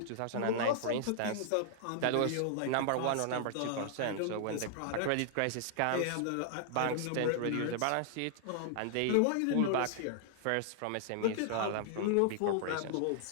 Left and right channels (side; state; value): both; different; correlation -0.01